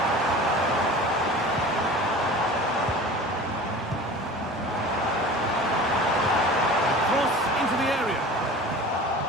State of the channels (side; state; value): both; normal; correlation 0.38